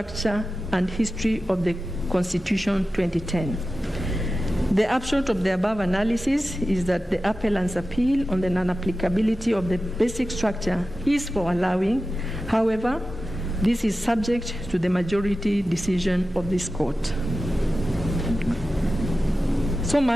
and history of the Constitution 2010. The upshot of the above analysis is that the appellant's appeal on the non-applicability of the basic structure is for allowing. However, this is subject to the majority decision of this court. So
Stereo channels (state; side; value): normal; both; correlation 0.93